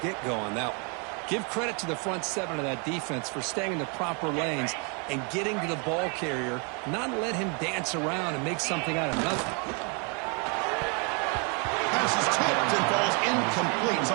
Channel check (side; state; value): left; quieter; 35.4 dB